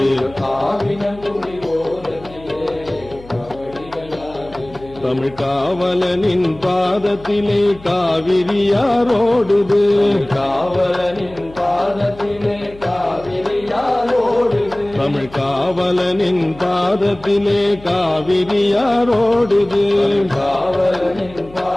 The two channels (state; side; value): noise; left; hum, 20 dB below the sound